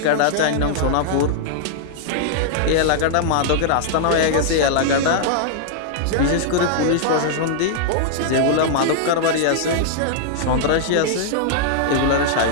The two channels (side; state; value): both; different; correlation -0.01